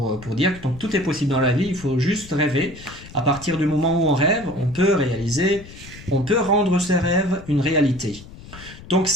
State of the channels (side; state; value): left; noise; rumble, 17 dB below the sound